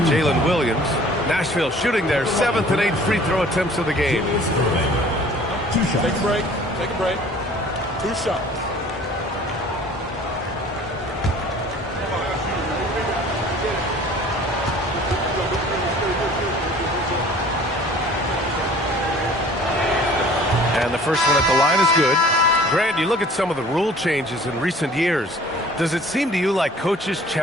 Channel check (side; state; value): both; normal; correlation 0.50